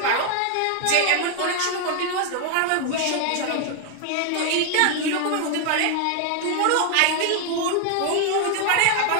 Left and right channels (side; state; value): both; different; correlation 0.00